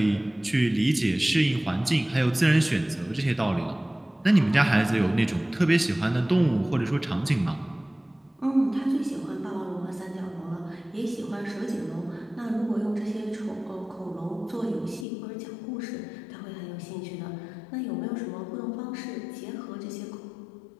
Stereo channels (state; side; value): drops out; right; at 15.1 s